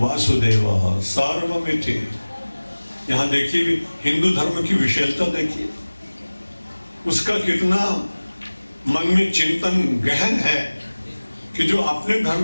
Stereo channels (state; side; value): inverted; both; correlation -1.00